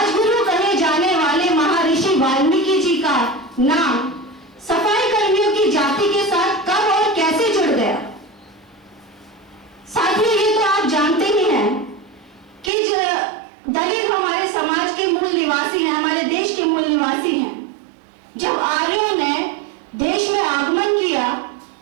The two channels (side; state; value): left; drops out; at 12.7 s